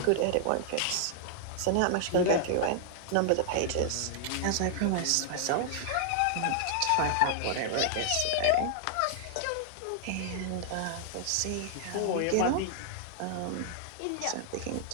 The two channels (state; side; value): different; both; correlation 0.00